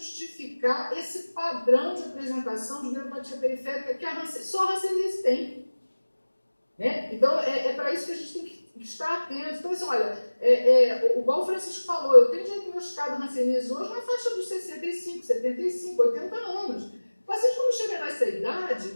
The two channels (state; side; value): inverted; both; correlation -1.00